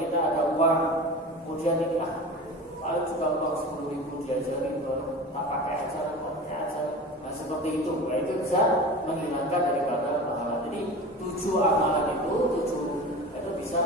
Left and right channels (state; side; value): normal; both; correlation 0.33